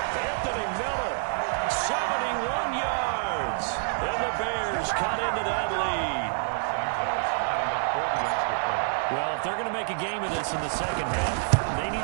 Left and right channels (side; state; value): left; silent; 58 dB below the other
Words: Anthony Miller, 71 yards. And the Bears cut into that lead. Well, if they're going to make a game of this in the second half, they need